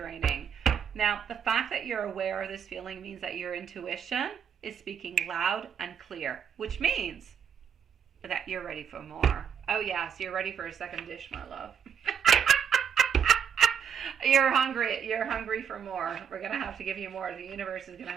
Now, the fact that you're aware of this feeling means that your intuition is speaking loud and clear, which means that you're ready for more. Oh yes, you're ready for a second dish, my love. You're hungry for more. We're going to have to give you more. The universe is going to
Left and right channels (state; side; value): quieter; left; 7.9 dB